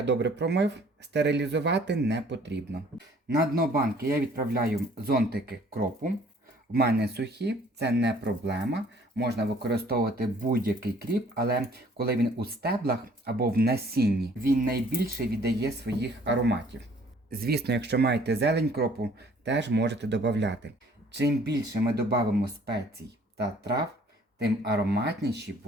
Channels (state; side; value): normal; both; correlation 0.57